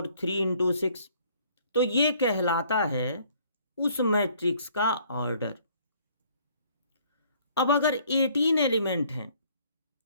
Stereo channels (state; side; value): inverted; both; correlation -0.60